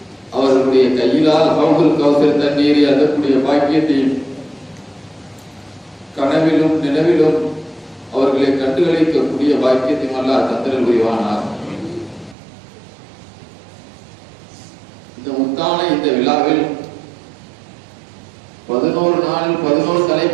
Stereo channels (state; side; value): drops out; left; at 12.4 s